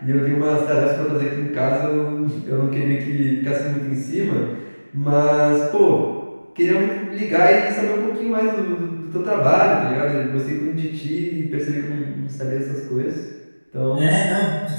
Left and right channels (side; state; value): both; inverted; correlation -1.00